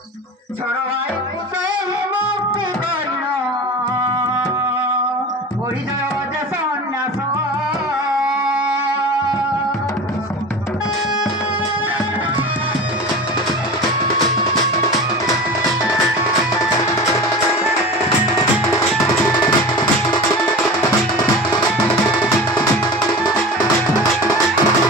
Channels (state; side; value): normal; both; correlation 0.32